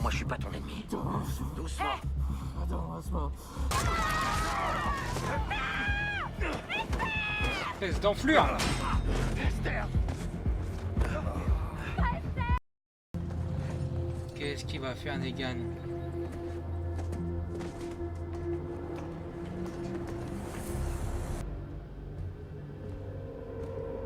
Moi je suis pas ton ennemi. Doucement. Espèce d'enflure là. Esther! Qu'est-ce qu'il va faire Negan?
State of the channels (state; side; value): identical; both; correlation 1.00